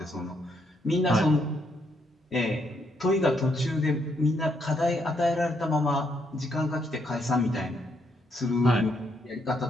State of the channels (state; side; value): normal; both; correlation 0.75